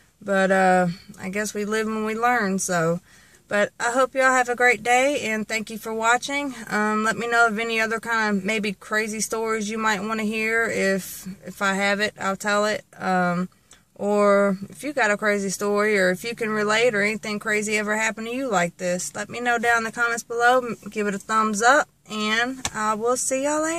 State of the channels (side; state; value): both; identical; correlation 1.00